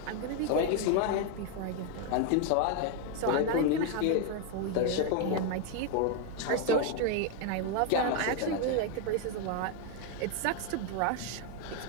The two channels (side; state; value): both; different; correlation 0.01